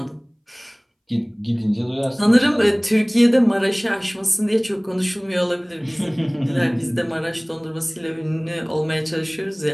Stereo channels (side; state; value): both; identical; correlation 1.00